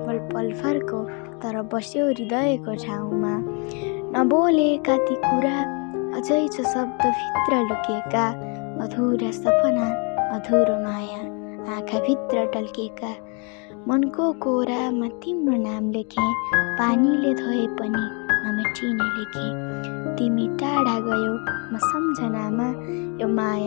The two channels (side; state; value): right; quieter; 35.3 dB